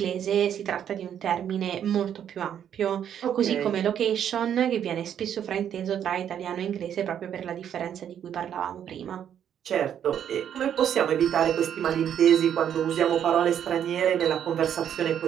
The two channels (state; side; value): quieter; left; 9.3 dB